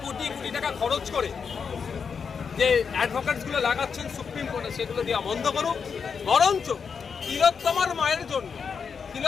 কোটি কোটি টাকা খরচ করে যে অ্যাডভোকেটসগুলো লাগাচ্ছেন সুপ্রিম কোর্টে, সেগুলো দেওয়া বন্ধ করুক। বরঞ্চ তিলোত্তমার মায়ের জন্য,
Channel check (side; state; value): right; quieter; 6.1 dB